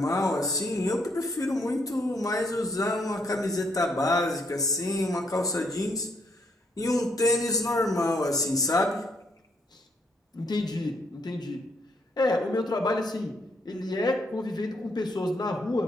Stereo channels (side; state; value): both; normal; correlation 0.72